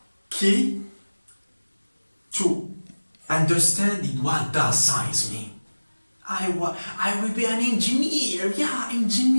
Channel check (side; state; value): both; inverted; correlation -1.00